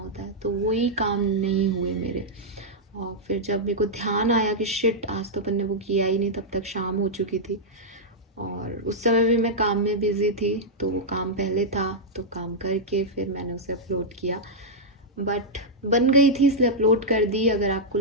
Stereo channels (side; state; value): both; normal; correlation -0.07